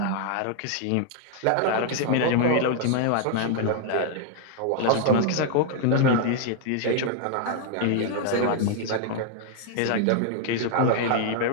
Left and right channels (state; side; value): different; both; correlation 0.00